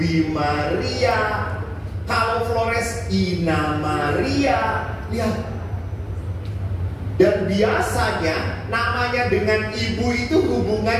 Maria. Kalau Flores Ina Maria. Lihat. Dan biasanya namanya dengan ibu itu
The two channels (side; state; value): both; identical; correlation 1.00